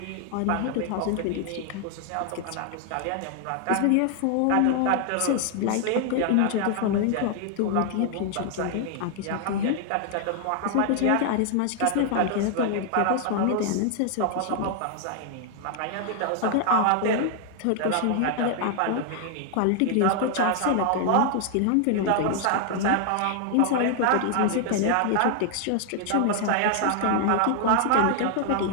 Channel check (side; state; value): both; different; correlation 0.00